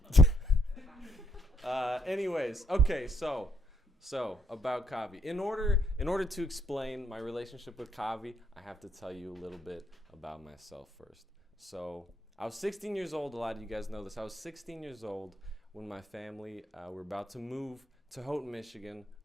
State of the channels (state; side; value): normal; both; correlation 0.74